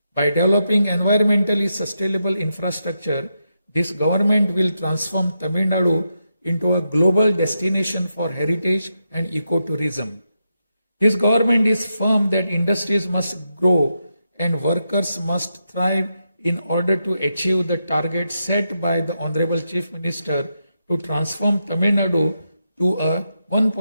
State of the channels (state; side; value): inverted; both; correlation -0.85